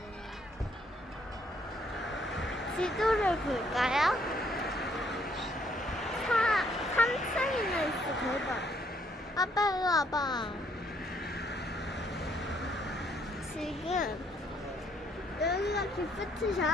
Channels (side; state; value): both; normal; correlation 0.68